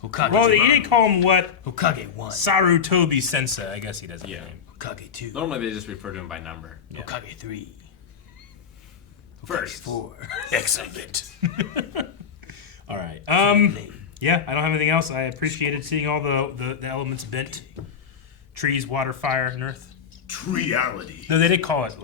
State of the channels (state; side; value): quieter; right; 7.0 dB